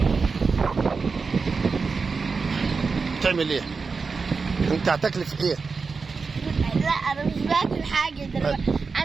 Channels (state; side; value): quieter; left; 4.7 dB